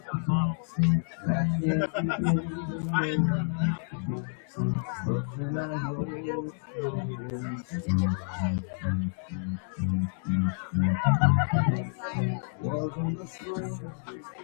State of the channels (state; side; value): silent; right; digital silence